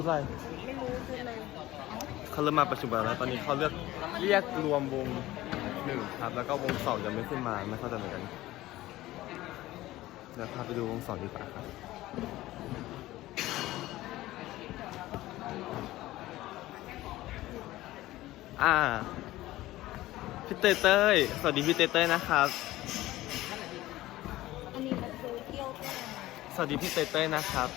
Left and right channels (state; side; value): quieter; right; 16.6 dB